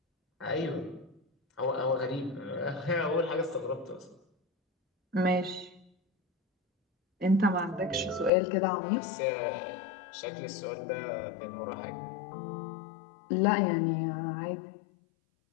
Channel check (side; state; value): right; drops out; at 8.3 s